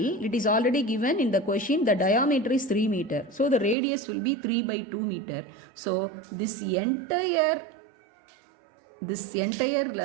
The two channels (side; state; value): left; drops out; at 3.8 s